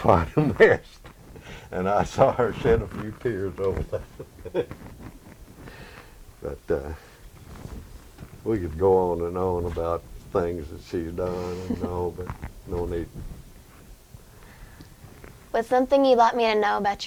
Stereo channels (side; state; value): both; identical; correlation 1.00